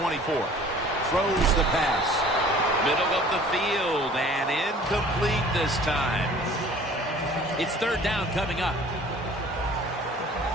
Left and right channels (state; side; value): normal; both; correlation 0.49